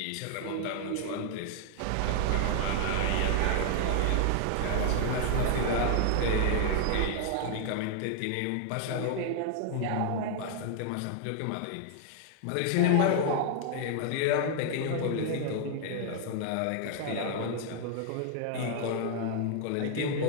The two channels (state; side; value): different; both; correlation 0.00